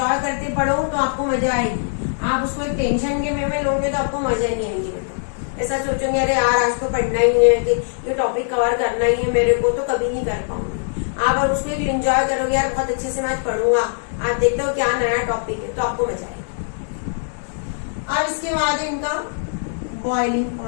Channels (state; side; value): silent; right; digital silence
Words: करते पढ़ो तो आपको मजा आएगी। आप उसको एक टेंशन के वे में लोगे तो आपको मजा ही नहीं आएगी बेटा। ऐसा सोचोगे अरे यार आज तो पढ़ना ही है, कि ये टॉपिक कवर करना ही है मेरे को, तो कभी नहीं कर पाऊंगी। आप अगर उसको एक एंजॉय करोगे, यार बहुत अच्छे से मैं पढ़ूंगा, आप देखते हो क्या नया टॉपिक है, तो आपको मजा आएगी। अब इसके बाद इनका बॉइलिंग